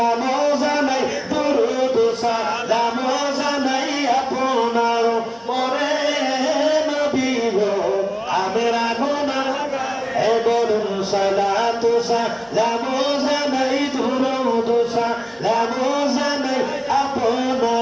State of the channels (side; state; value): both; identical; correlation 1.00